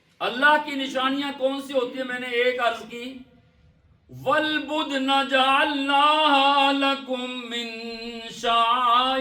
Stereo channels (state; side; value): identical; both; correlation 1.00